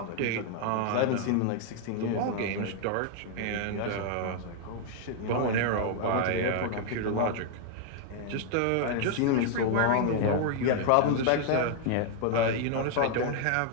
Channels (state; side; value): different; both; correlation 0.00